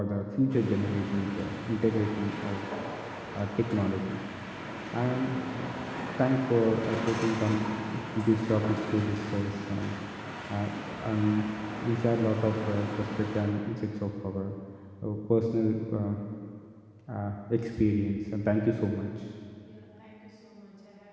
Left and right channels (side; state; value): both; identical; correlation 1.00